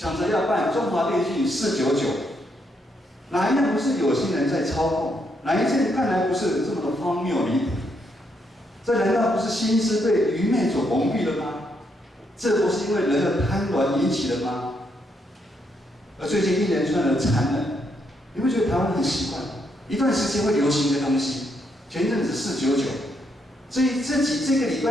着要办中华电信499，哪一样不是有心人在操控？哪一件看来不是这么的荒谬离谱？这难道不是心思被愚昧所蒙蔽了吗？这不是因为人的贪婪引起的吗？而最近一连串的残忍，你会觉得台湾很习惯，一段时间会流行的东西。前阵子499，这个礼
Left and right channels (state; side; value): normal; both; correlation 0.77